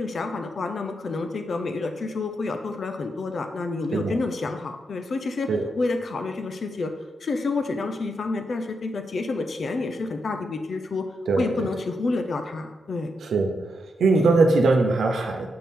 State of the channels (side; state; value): both; normal; correlation 0.83